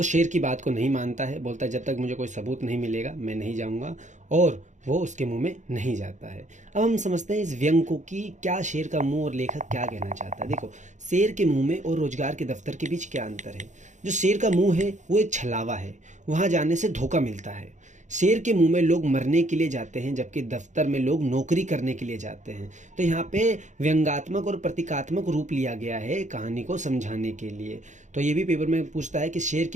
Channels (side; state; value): left; late; 0.35 ms